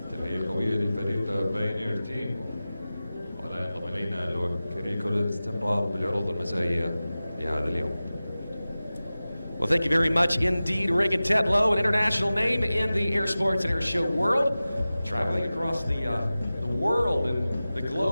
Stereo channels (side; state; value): both; inverted; correlation -0.96